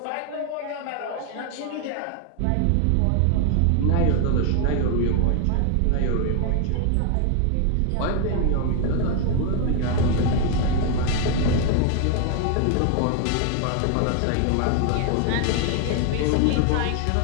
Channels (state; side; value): different; both; correlation 0.01